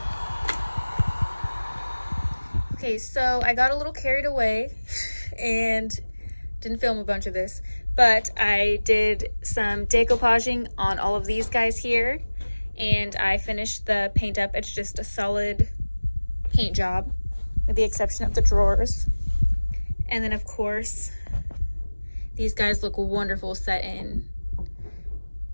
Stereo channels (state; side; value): inverted; both; correlation -1.00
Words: Okay, so I got a little carried away and didn't film a bunch of this, but I did some decoupaging on all of these guys here, and I finished the paint up. It's just a solid paint job with the exception of the drawers. And then of course, these guys look wonderful set in.